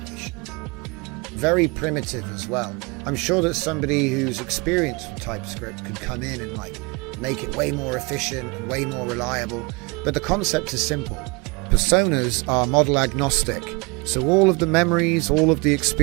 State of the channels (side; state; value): left; quieter; 28.1 dB